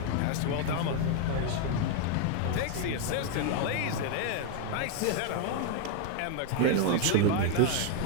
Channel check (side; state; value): both; different; correlation 0.01